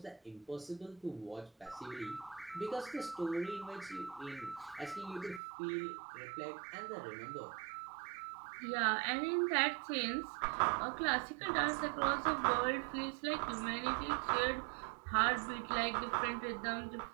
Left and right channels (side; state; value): left; drops out; at 5.4 s